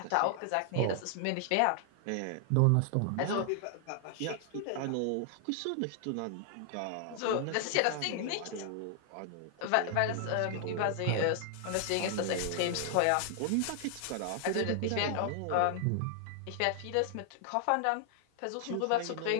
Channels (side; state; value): both; different; correlation 0.00